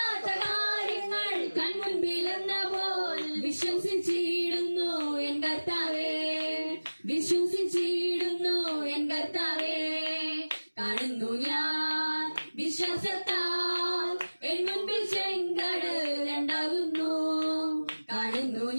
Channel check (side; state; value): both; inverted; correlation -1.00